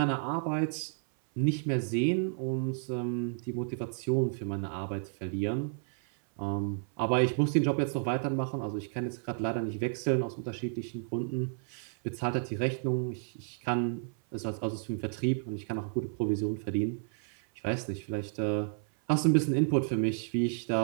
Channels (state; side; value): silent; left; 57 dB below the other